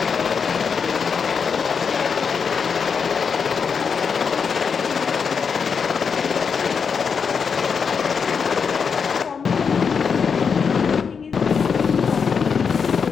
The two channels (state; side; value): quieter; right; 6.1 dB